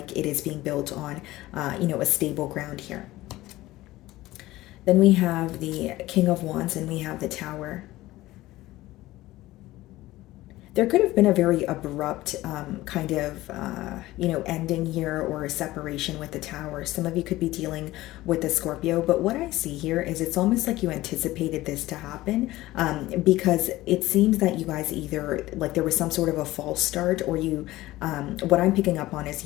it is being built on a stable ground here. Then we have the King of Wands, and we have the Tower. There could have been a very abrupt kind of, ending here, or a separation with the Tower. Some of you could be dealing with the Scorpio, but what I see here is it's almost like you anticipated this to happen, because it seems that you guys either, like, there was some sort of a false start, or you, what I'm picking up on is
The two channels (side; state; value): right; quieter; 17.3 dB